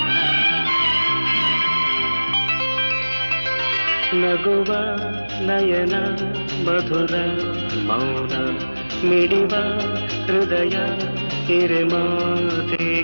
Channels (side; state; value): both; inverted; correlation -1.00